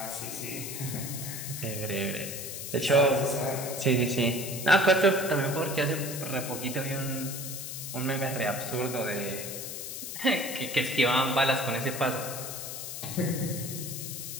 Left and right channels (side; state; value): left; noise; hiss, 7 dB below the sound